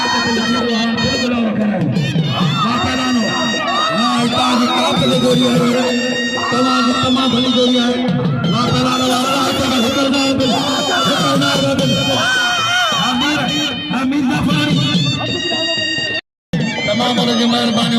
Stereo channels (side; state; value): both; identical; correlation 1.00